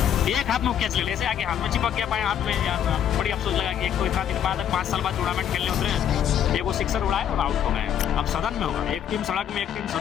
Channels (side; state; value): right; quieter; 9.5 dB